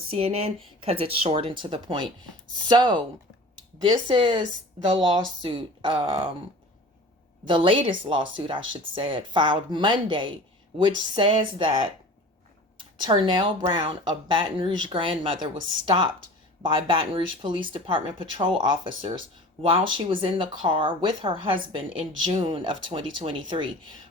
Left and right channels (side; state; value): both; normal; correlation 0.40